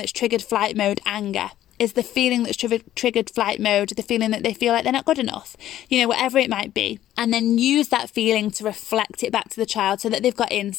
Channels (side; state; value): right; quieter; 12.7 dB